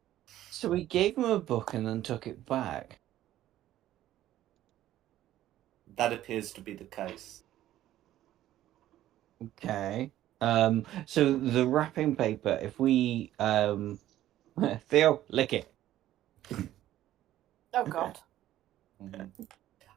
So we gave him a book and then took it back. That appears to be the case. Okay. So the wrapping paper, if we Theo, lick it. Oh God. Mm-hmm.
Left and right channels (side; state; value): left; quieter; 13.4 dB